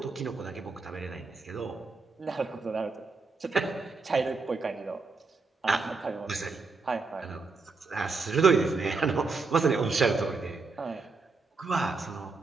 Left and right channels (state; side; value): quieter; left; 4.1 dB